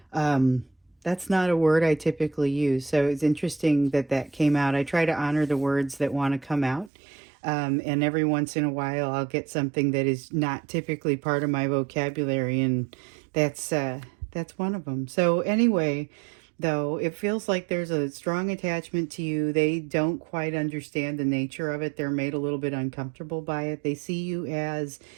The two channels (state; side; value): drops out; left; at 6.9 s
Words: That's not a word I typically use. So it's interesting that that came out. I try to honor the words that want to come out. And every once in a while, I'll get something that is not typically part of my vocabulary, and that's one of them. So anyway, though, it feels like there's a strong attachment to you. They don't quite understand the nature of it. They're made a little bit uncomfortable by it. They see you as